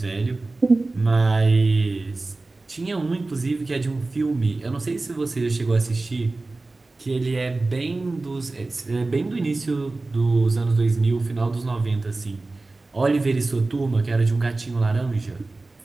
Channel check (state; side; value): quieter; left; 3.3 dB